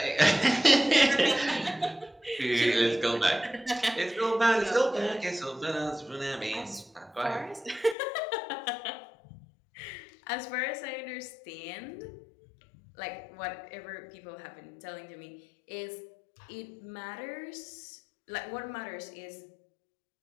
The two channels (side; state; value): right; drops out; at 8.0 s